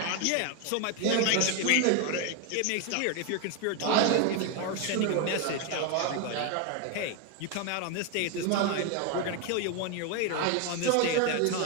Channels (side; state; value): both; different; correlation 0.01